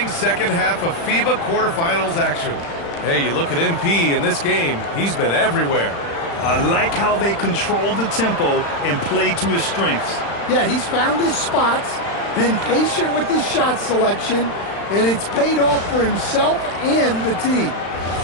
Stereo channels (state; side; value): late; right; 35 ms